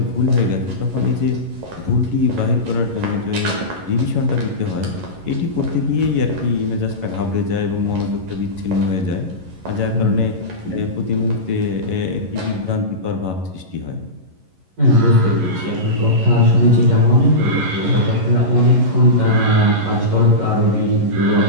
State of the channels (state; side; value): late; left; 11 ms